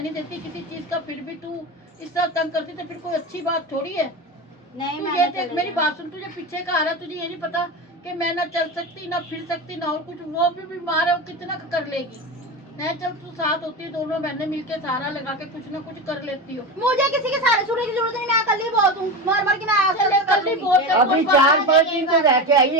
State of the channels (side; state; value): both; normal; correlation 0.22